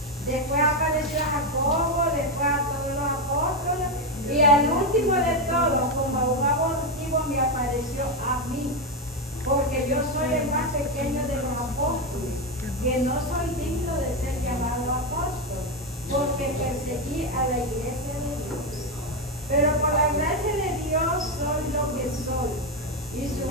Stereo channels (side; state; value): both; normal; correlation 0.08